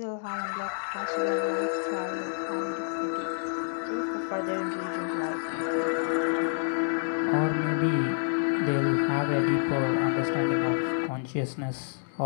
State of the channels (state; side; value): silent; right; digital silence